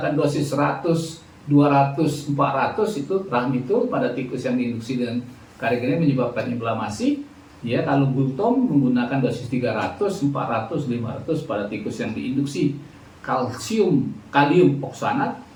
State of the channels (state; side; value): identical; both; correlation 1.00